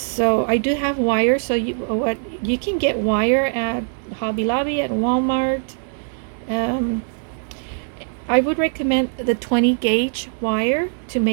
I do have wire, so you can get wire at Hobby Lobby, at Walmart. I would recommend the 20 gauge wire to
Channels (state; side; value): silent; left; digital silence